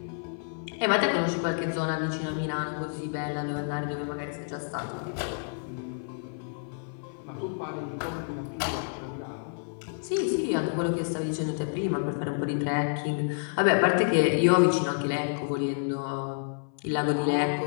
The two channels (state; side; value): silent; right; 56 dB below the other